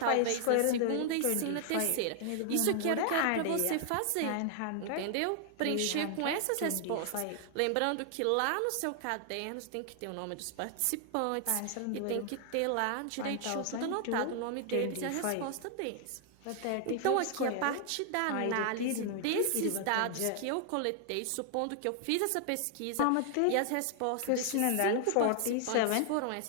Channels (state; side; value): different; both; correlation 0.00